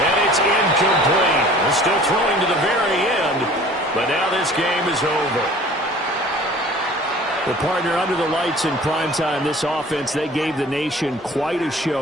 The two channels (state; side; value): normal; both; correlation 0.47